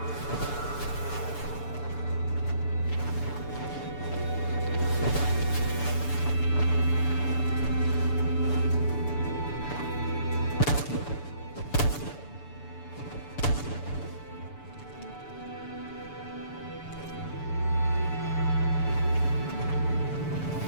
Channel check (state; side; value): late; right; 6.9 ms